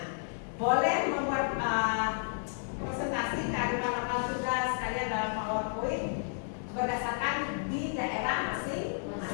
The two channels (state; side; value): silent; right; 56 dB below the other